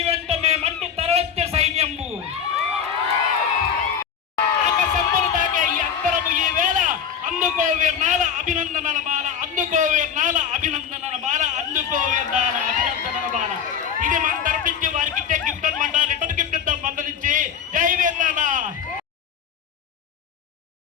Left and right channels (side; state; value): right; quieter; 7.7 dB